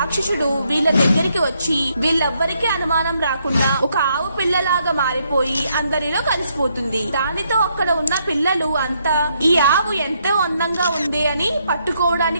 వీళ్ళ దగ్గరికి వచ్చి వీళ్ళెవ్వరికీ అనుమానం రాకుండా ఒక ఆవు పిల్లలాగా మారిపోయి అందరిలో కలిసిపోతుంది. దానితో అక్కడ ఉన్న పిల్లలు అంతా ఈ ఆవు ఎంతో అందంగా ఉంది అని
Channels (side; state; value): both; inverted; correlation -0.75